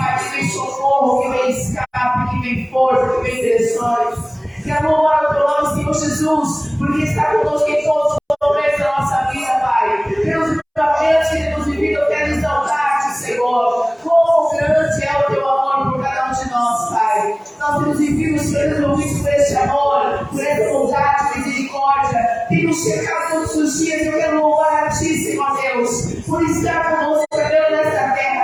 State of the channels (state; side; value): identical; both; correlation 1.00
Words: que vem socorro, que vem escape, que vem força, que vem direções. Quero louvar o Teu nome, Senhor Jesus, porque está conosco em todos os momentos da nossa vida, Pai. Pelos livramentos que temos vivido, eu quero exaltar-Te, Senhor. Quão grande é o Teu amor por cada um de nós, Pai. Nós temos vivido, Senhor, envolvidos por esse amor, por essa bondade, misericórdia. Tem nos checado todos os dias. Eu quero louvar a Ti, Senhor Deus, por estar conosco, Deus, nesta